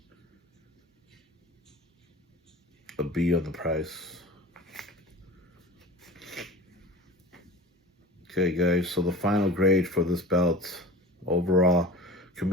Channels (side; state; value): both; normal; correlation 0.37